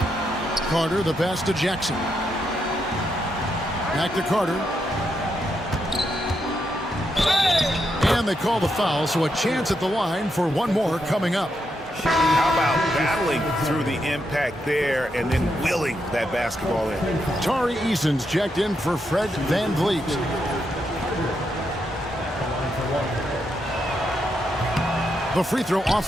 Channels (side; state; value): both; normal; correlation 0.81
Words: Carter, the pass to Jackson. Back to Carter. And they call the foul, so a chance at the line for one more coming up. How about battling through the impact there and then willing that basketball in? Tari Eason's checked in for Fred VanVleet. The free throw off